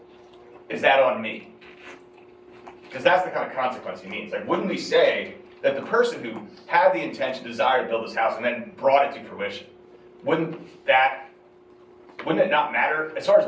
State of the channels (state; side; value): identical; both; correlation 1.00